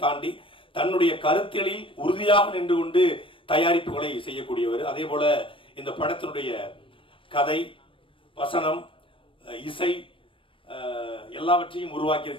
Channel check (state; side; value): late; right; 0.25 ms